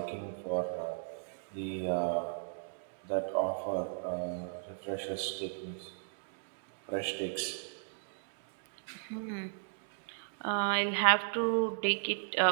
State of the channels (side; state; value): left; silent; digital silence